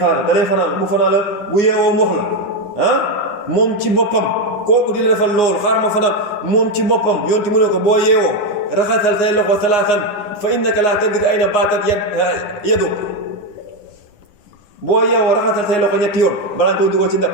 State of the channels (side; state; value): right; late; 10 ms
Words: da lay fanaan bu fanaan la bu yeewoo mu wax la moom ci boppam kooku di la defal loolu xaar ma fanaan moom ci boppam yonti mu ne ko boo yeewoo raxasal say loxo salaasan fa innaka laa tadri ayna baatat yadu boo yeewoo raxasal say loxo ñetti yoon balaa nga koy dugal ci ndax